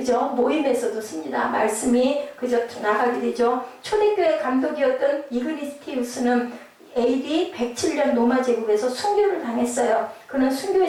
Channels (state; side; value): identical; both; correlation 1.00